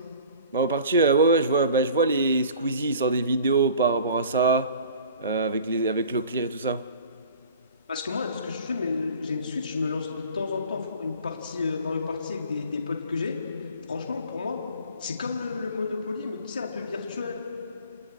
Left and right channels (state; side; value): inverted; both; correlation -0.44